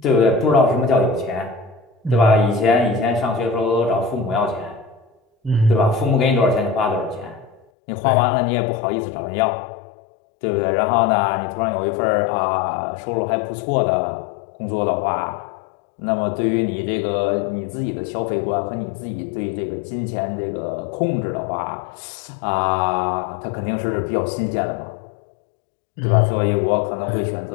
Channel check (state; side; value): drops out; right; at 7.6 s